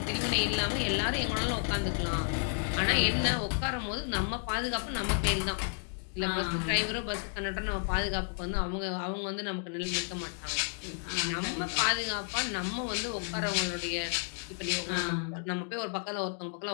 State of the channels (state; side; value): silent; right; 56 dB below the other